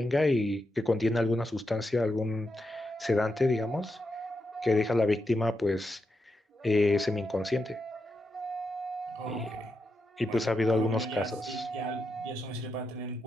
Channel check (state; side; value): normal; both; correlation 0.85